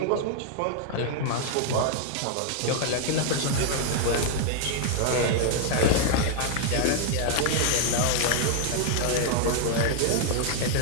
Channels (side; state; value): both; different; correlation 0.00